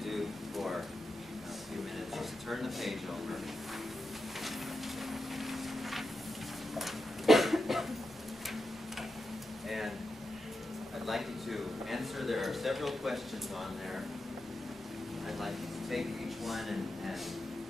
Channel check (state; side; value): normal; both; correlation 0.88